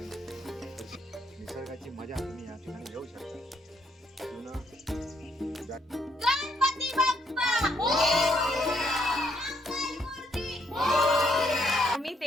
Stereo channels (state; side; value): normal; both; correlation 0.72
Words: निसर्गाची मजा तुम्ही या ठिकाणी घेऊ शकता. गणपती बाप्पा मी